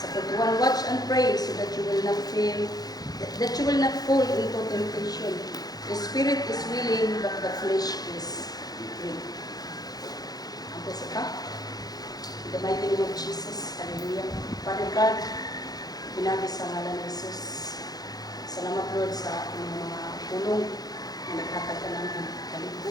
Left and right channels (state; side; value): late; right; 0.19 ms